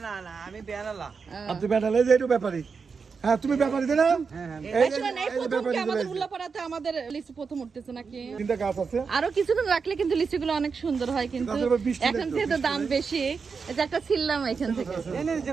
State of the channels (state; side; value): quieter; left; 5.3 dB